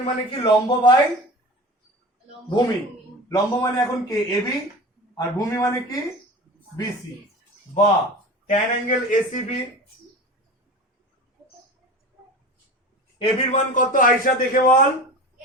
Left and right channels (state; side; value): normal; both; correlation 0.33